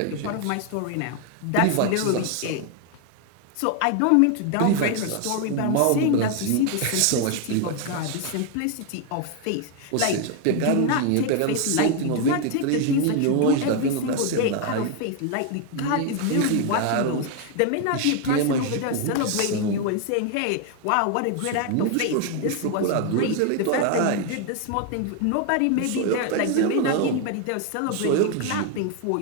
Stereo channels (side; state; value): both; different; correlation 0.01